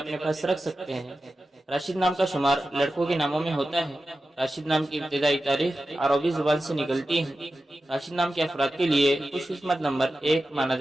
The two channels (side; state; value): both; normal; correlation 0.93